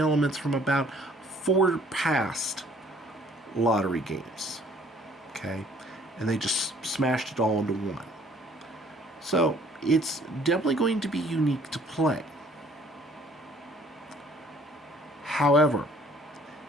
from about 4 past lottery games. Okay? And they just smashed it all into one. So, it's definitely going to be unique to play. However,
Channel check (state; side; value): normal; both; correlation 0.58